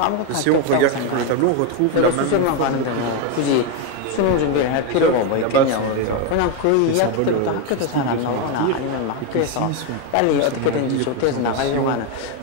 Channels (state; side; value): different; both; correlation 0.02